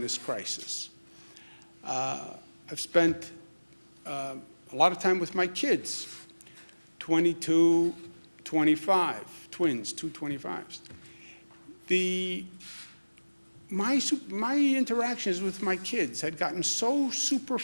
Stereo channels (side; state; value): both; inverted; correlation -1.00